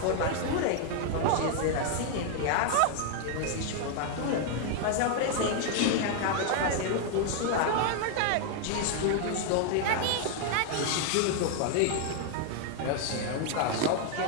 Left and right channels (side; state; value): both; different; correlation 0.00